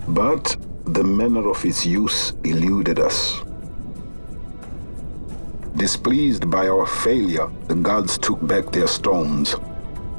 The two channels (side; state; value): both; inverted; correlation -1.00